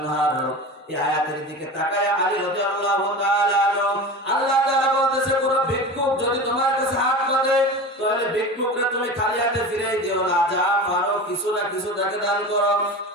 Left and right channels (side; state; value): both; normal; correlation 0.31